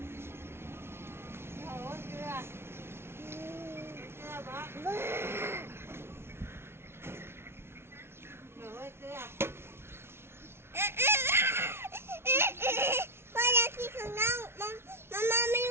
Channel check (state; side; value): late; left; 0.12 ms